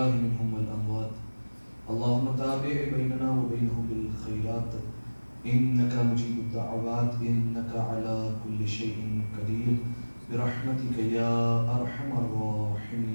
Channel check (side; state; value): both; inverted; correlation -1.00